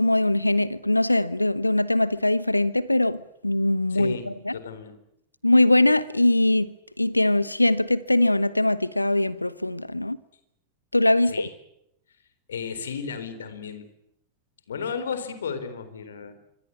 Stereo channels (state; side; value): inverted; both; correlation -0.97